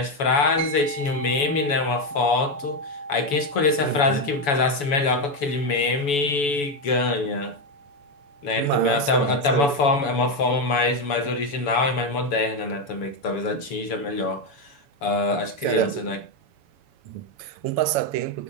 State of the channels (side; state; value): right; late; 7.0 ms